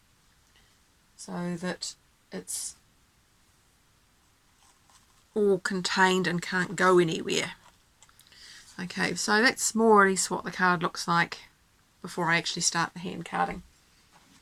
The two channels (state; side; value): identical; both; correlation 1.00